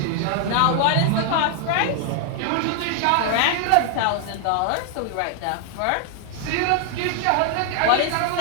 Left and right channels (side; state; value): both; different; correlation 0.00